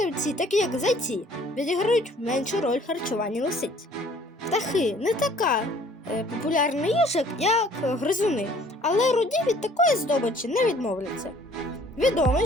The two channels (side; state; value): both; normal; correlation 0.56